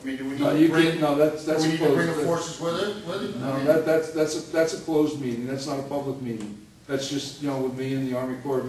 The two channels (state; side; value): identical; both; correlation 1.00